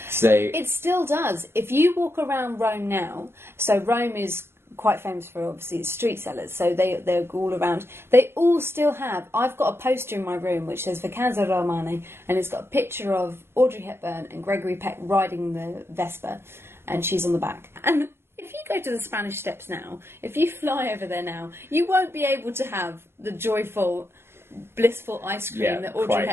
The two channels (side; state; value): left; late; 0.12 ms